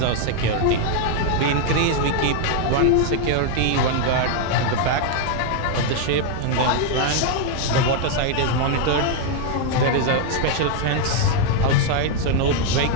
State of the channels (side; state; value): both; different; correlation 0.00